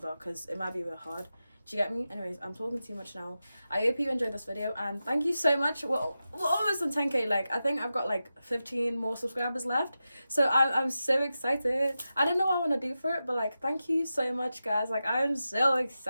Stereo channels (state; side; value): inverted; both; correlation -0.92